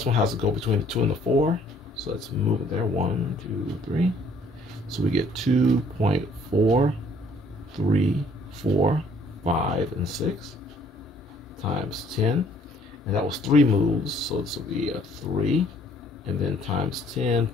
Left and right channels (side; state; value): both; normal; correlation 0.61